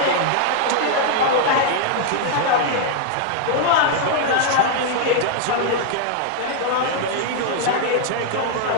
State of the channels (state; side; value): different; both; correlation 0.00